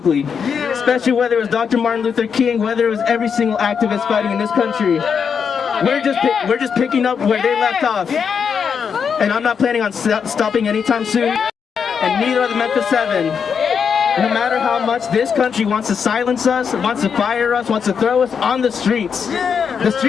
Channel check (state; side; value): quieter; right; 6.6 dB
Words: especially whether it was Dr. Martin Luther King, whether it was every single activist fighting in this country. We're just picking up where they left off, and I'm not planning on stopping anytime soon, and neither are the Memphis 7. No matter how much this country wants to silence us, wants to fire us, wants to throw us on the streets